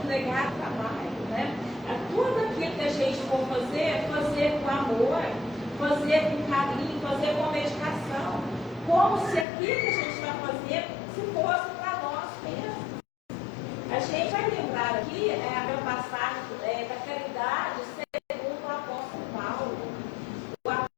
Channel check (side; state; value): right; drops out; at 9.5 s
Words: o trabalho, né? Tudo aquilo que a gente for fazer, fazer com amor, fazer com carinho, fazer com dedicação, como se aquilo que a gente está fazendo se fosse para nós mesmos. A gente vai lembrar aqui a passagem da caridade segundo o apóstolo Paulo. O